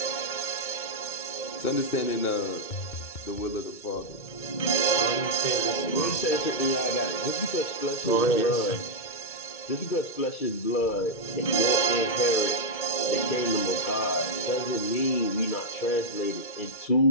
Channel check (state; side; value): late; right; 2.2 ms